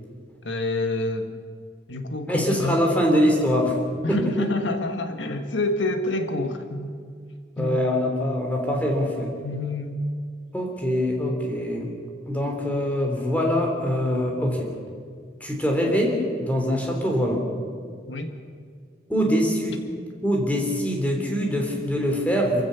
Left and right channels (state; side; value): normal; both; correlation 0.63